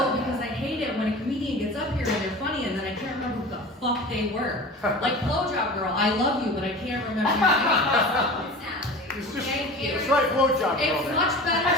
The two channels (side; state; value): both; normal; correlation 0.35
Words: because I hate it when a comedian gets up here and they're funny and then I can't remember who the fuck they were. Like Blowjob Girl, I love you, but I can't remember your name. Thank you. It's like Blowjob Girl. It's much